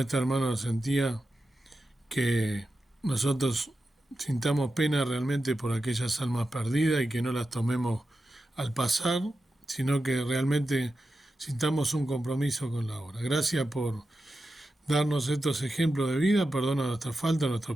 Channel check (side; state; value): both; normal; correlation 0.90